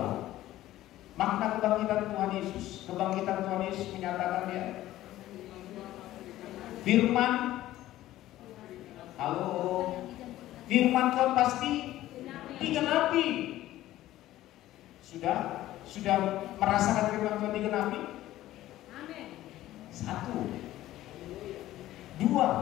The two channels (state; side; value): quieter; right; 14.8 dB